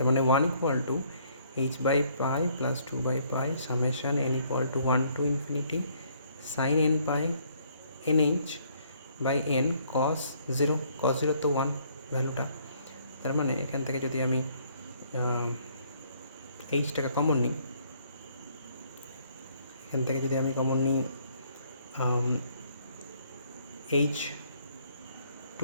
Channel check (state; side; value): inverted; both; correlation -0.65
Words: মানে 1 = h/pi + 2/pi summation n = 1 to infinity sin n pi nh by n cos 0। cos 0 তো 1 ভ্যালুটা। তার মানে এখান থেকে যদি আমি এইচটাকে কমন নিই, এখান থেকে যদি আমি কমন নিই h